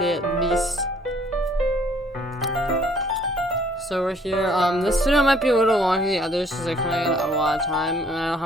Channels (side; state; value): both; normal; correlation 0.61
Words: at least. So we're here. This video might be a little longer than the others because I kind of got a lot of time and I don't